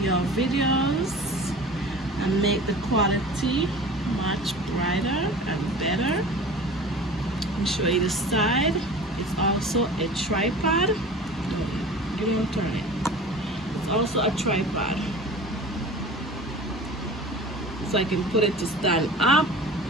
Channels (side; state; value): both; normal; correlation 0.39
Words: videos and make the quality much brighter and better. Let me show you the side. It's also a tripod. You don't turn it. It's also a tripod, so I can put it to stand up.